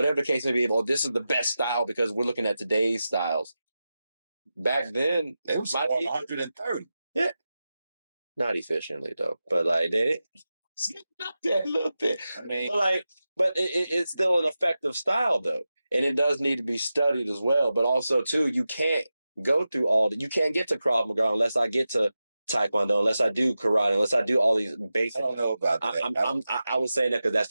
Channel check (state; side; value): inverted; both; correlation -0.92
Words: the case may be, or this is the best style because we're looking at today's styles. Back then, it was 130. Yeah, not efficiently though, but like they not that little bit. I mean, but it's still an effective style though, and it does need to be studied as well. But also too, you can't go through you can't get to Krav Maga unless I get to Taekwondo, unless I do karate, unless I do all these basic. I don't know about that. I was saying that because that's